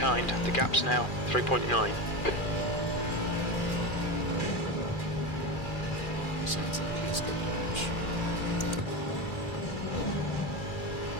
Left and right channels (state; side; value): late; right; 2.4 ms